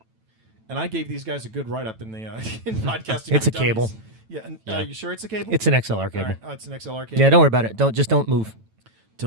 And I gave these guys a good write up in the in podcasting. It's for a cable. Dummies. Yeah. And, Yeah. you sure it's a cable? It's an XLR All cable. right. Oh, it's an XLR cable. Yeah, don't worry about it. Don't move.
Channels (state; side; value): late; left; 9.1 ms